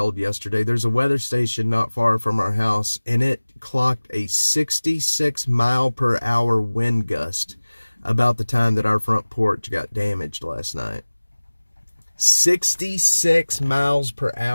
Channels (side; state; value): both; inverted; correlation -1.00